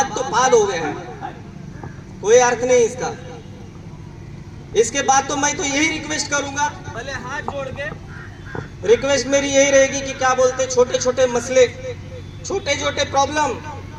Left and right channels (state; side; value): identical; both; correlation 1.00